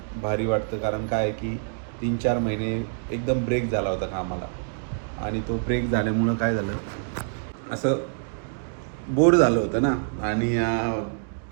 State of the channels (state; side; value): silent; left; digital silence